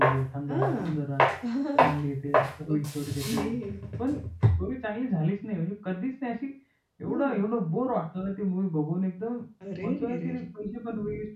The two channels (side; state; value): both; identical; correlation 1.00